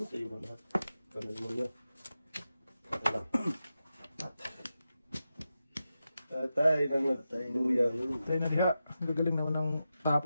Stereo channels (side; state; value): both; inverted; correlation -0.91